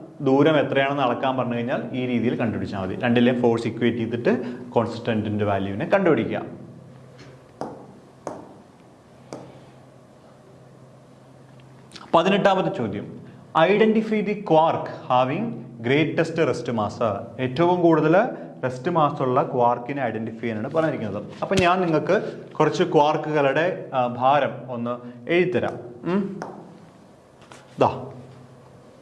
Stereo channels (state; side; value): identical; both; correlation 1.00